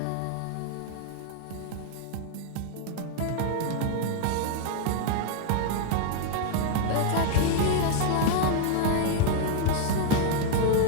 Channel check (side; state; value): both; different; correlation 0.00